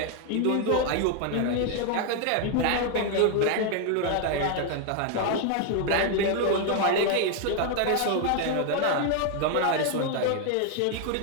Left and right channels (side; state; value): both; different; correlation 0.00